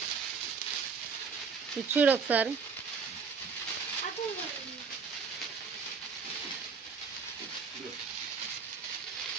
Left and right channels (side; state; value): left; quieter; 5.4 dB